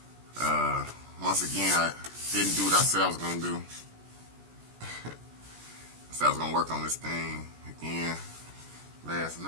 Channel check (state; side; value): late; left; 17 ms